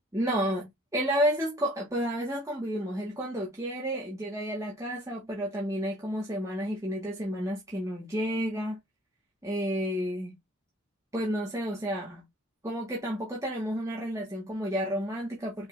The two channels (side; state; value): both; normal; correlation 0.56